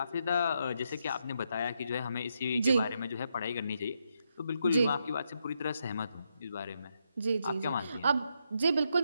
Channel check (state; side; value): inverted; both; correlation -0.80